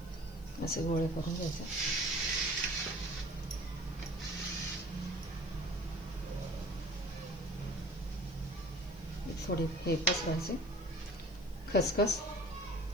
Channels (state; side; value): noise; left; hiss, 24 dB below the sound